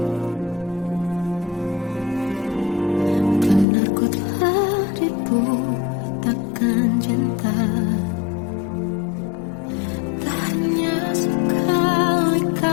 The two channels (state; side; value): drops out; right; at 3.7 s